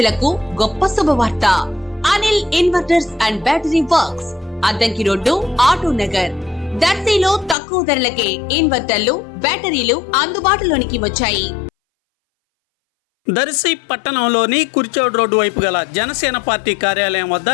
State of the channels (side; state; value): right; drops out; at 7.6 s